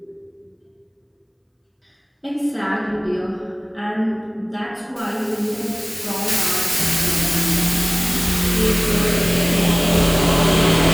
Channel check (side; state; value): both; identical; correlation 1.00